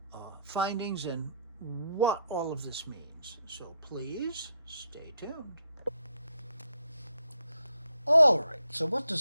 findings and what all of this means. So please stay tuned. All right, so what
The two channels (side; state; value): both; inverted; correlation -0.74